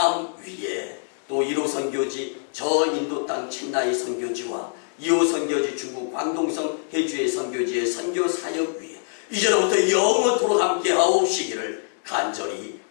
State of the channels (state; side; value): silent; right; digital silence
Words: 위에, 또 1호 선교지 저 인도 땅 첸나이 선교지와 2호 선교지 중국 광동성 해주의 선교지의 선교 사역 위에 이제로부터 영원토록 함께 하옵시기를